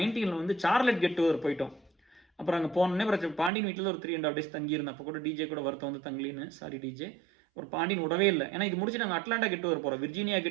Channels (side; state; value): left; drops out; at 3.5 s